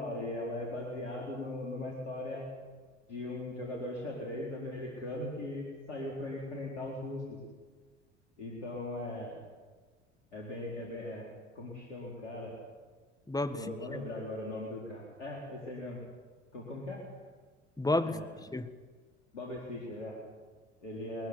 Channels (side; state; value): both; normal; correlation 0.48